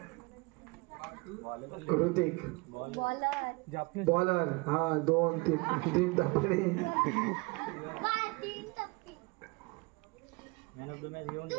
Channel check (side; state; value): left; quieter; 27.4 dB